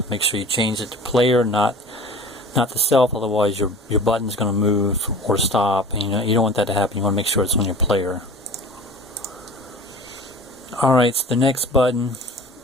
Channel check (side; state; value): both; normal; correlation 0.41